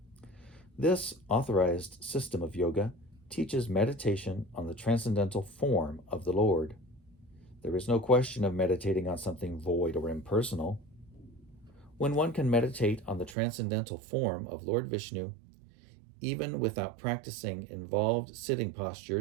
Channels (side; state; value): left; drops out; at 13.4 s